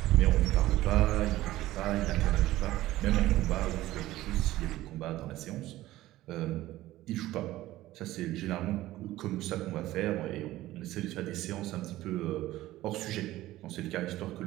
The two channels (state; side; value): quieter; left; 16.0 dB